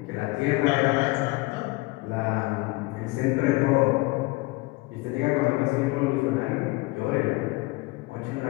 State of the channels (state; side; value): quieter; right; 22.6 dB